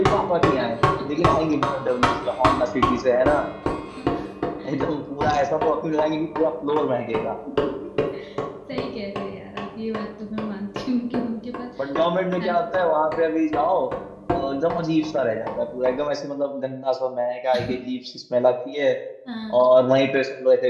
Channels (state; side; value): identical; both; correlation 1.00